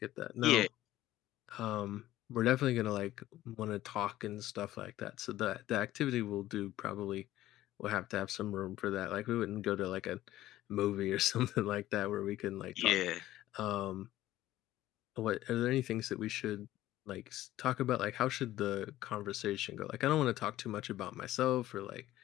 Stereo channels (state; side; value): quieter; right; 14.7 dB